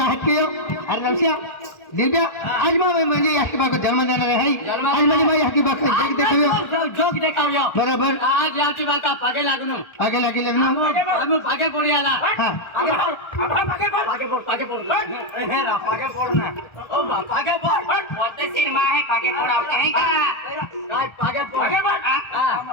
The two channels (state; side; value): late; right; 1.4 ms